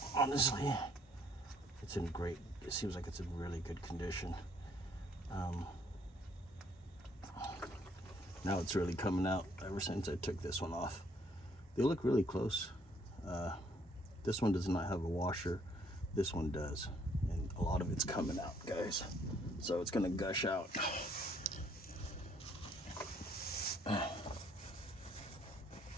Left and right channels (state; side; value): normal; both; correlation 0.65